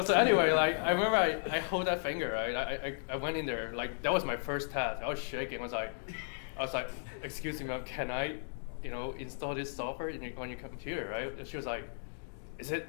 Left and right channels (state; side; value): silent; right; digital silence